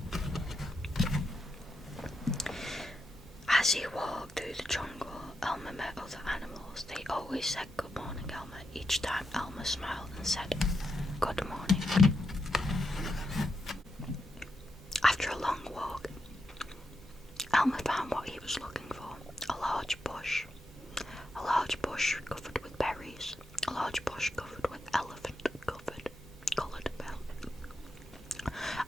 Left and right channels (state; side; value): normal; both; correlation 0.85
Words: As he walked through the jungle, Elmer met other animals. They always said good morning, Elmer. Each time Elmer smiled and said good morning. After a long walk, Elmer found what he was looking for. A large bush. A large bush covered with berries. A large bush covered with coloured berries.